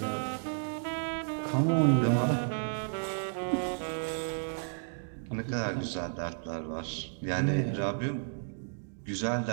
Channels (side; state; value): left; silent; digital silence